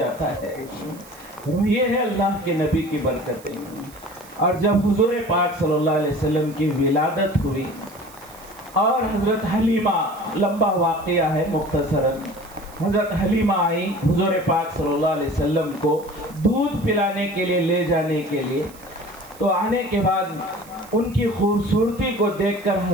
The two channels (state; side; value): noise; right; hiss, 22 dB below the sound